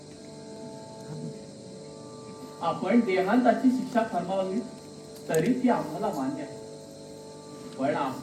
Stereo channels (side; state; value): both; identical; correlation 1.00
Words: आपण देहांताची शिक्षा फरमावली तरी ती आम्हाला मान्य आहे. पण